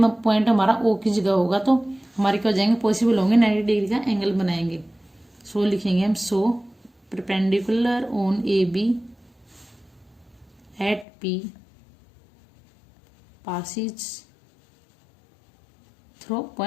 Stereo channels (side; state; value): right; drops out; at 11.1 s